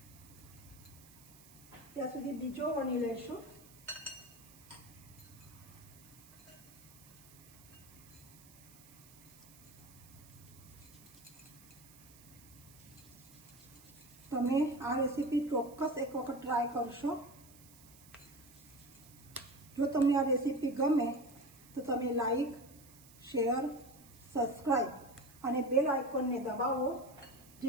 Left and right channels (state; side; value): noise; right; hiss, 22 dB below the sound